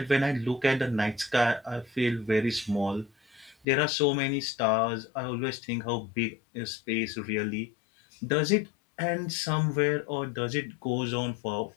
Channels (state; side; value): drops out; right; at 3.7 s